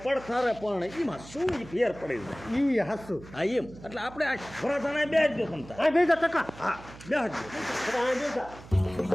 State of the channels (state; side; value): noise; right; hum, 18 dB below the sound